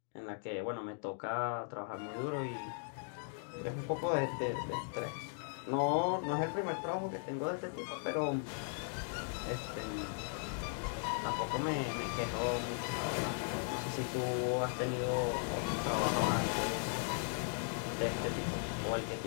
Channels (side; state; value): right; silent; 53 dB below the other